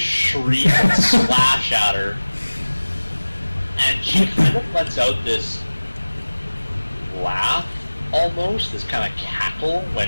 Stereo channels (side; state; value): both; inverted; correlation -1.00